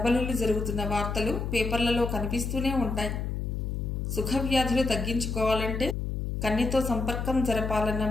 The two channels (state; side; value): noise; left; hum, 2 dB below the sound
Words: జరుగుతున్న వార్తలు పేపర్లలో కనిపిస్తూనే ఉంటాయి. సుఖవ్యాధులు తగ్గించుకోవాలంటే కన్నెతో సంపర్కం జరపాలన్న